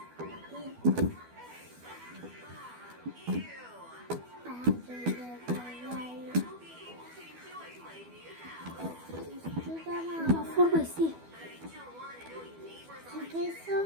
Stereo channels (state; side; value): late; left; 12 ms